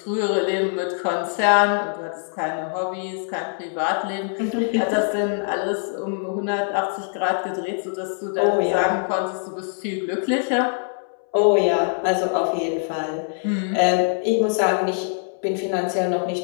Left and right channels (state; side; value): silent; right; 63 dB below the other